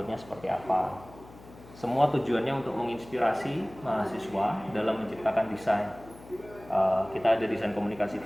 seperti apa. Semua tujuannya untuk menginspirasi mahasiswa dalam menciptakan desain. Kita ada desain komunikasi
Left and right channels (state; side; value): noise; left; hum, 20 dB below the sound